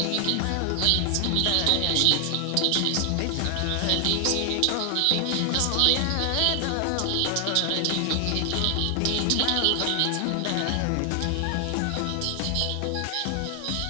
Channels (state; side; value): different; both; correlation 0.00